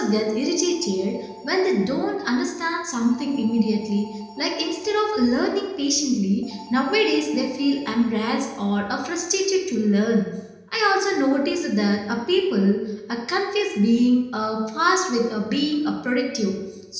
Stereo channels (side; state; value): both; identical; correlation 1.00